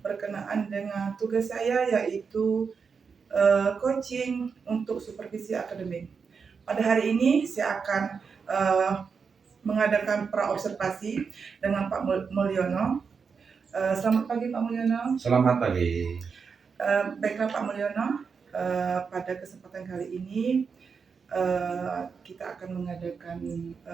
dengan tugas saya, yaitu coaching untuk supervisi akademik. Pada hari ini, saya akan mengadakan praobservasi dengan Pak Mulyono. Selamat pagi Pak Mulyono. Selamat pagi. Baiklah Pak Mulyono, pada kesempatan kali ini kita akan mengadakan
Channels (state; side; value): quieter; left; 5.7 dB